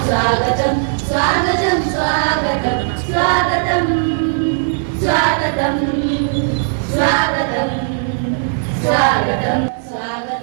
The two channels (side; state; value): left; silent; digital silence